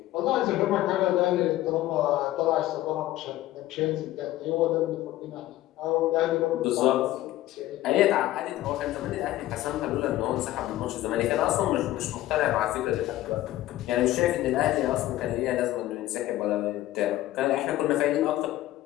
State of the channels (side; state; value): right; quieter; 15.2 dB